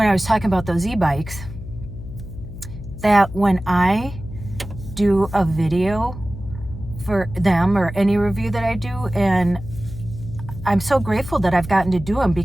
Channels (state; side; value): noise; left; hum, 12 dB below the sound